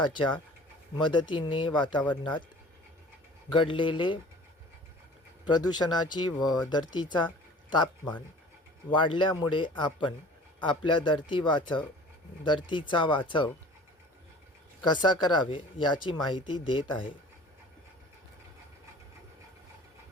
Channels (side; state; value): both; normal; correlation 0.45